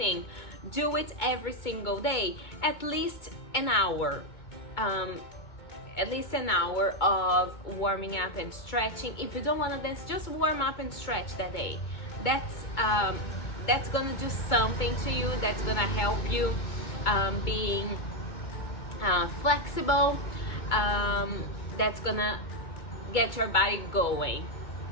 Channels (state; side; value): late; right; 2.2 ms